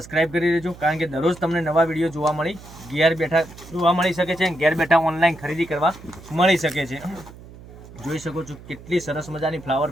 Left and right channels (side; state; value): right; noise; hum, 18 dB below the sound